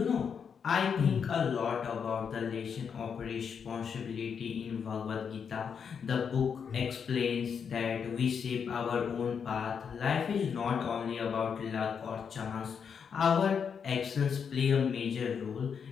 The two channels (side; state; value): right; quieter; 6.8 dB